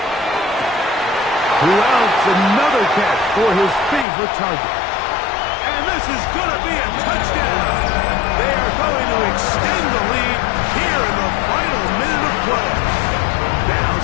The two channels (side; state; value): right; drops out; at 4.0 s